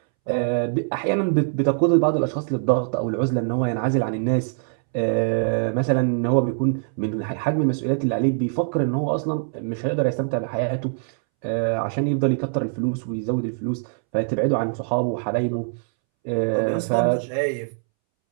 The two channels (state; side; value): silent; left; 63 dB below the other